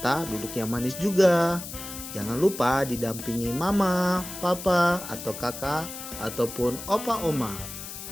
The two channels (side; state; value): left; noise; hiss, 10 dB below the sound